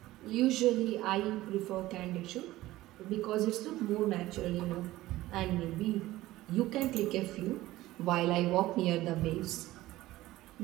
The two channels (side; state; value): left; quieter; 16.7 dB